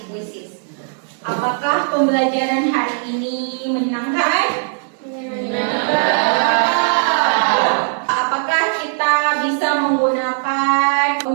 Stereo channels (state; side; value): silent; left; digital silence